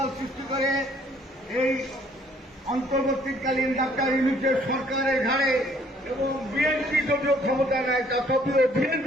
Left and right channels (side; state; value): both; normal; correlation 0.62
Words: সৃষ্টি করে এই অন্তর্বর্তীকালীন ডাক্তার ইউনূসের সরকারের ঘাড়ে এবং বিএনপি যদিও ক্ষমতা নেয় তথাপিও